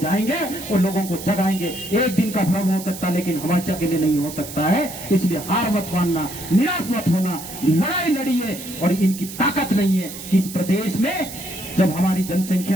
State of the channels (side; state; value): right; noise; hiss, 12 dB below the sound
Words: जाएंगे और लोगों को जगाएंगे। एक दिन का भ्रम हो सकता है लेकिन हमेशा के लिए नहीं हो सकता है। इसलिए हार मत मानना, निराश मत होना, लड़ाई लड़िए। और इनकी ताकत नहीं है कि इस प्रदेश में जब हमारी